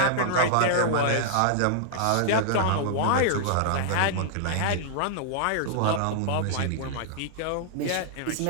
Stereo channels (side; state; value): both; different; correlation -0.01